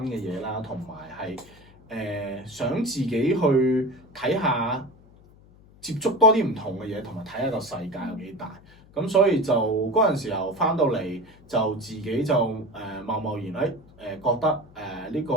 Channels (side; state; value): left; noise; hum, 25 dB below the sound